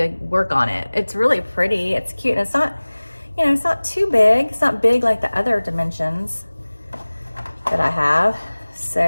work on it. It's really pretty, it's cute, and it's not, it's not too big. It's not big like the other dimensions that I have.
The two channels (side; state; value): both; inverted; correlation -1.00